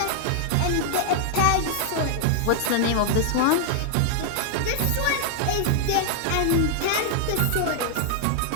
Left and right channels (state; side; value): different; both; correlation 0.00